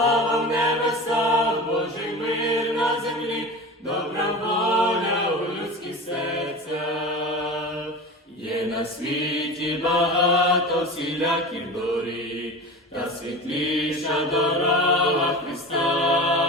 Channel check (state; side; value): normal; both; correlation 0.31